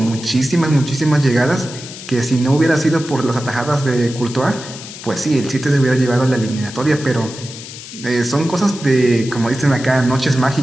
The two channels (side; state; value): left; noise; hiss, 13 dB below the sound